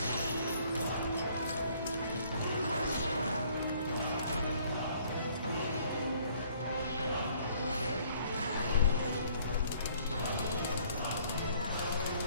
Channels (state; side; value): inverted; both; correlation -0.60